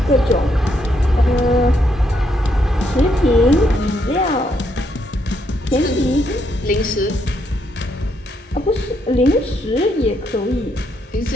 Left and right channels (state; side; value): normal; both; correlation 0.76